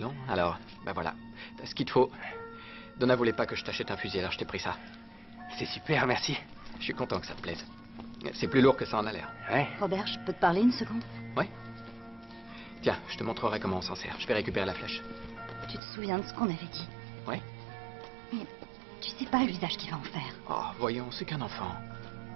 alors, ben voilà, t'as ce qu'il te faut. Donna voulait pas que je t'achète un fusil, alors je t'ai pris ça. C'est super, merci. Je suis content que ça te plaise. C'est plus lourd que ça en a l'air. Ouais. Robert, je peux te parler une seconde? Ouais. Tiens, je te montrerai comment on s'en sert. Je vais récupérer la flèche. Tu te souviens de ce qu'on avait dit? Ouais. Mais tu sais pas l'usage qu'il va en faire. Oh, voyons, c'est qu'un enfant.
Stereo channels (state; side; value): drops out; left; at 15.8 s